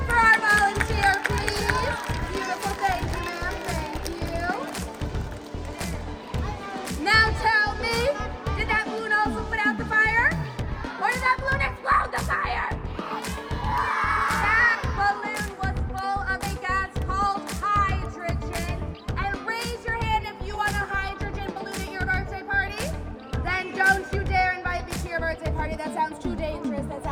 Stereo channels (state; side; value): identical; both; correlation 1.00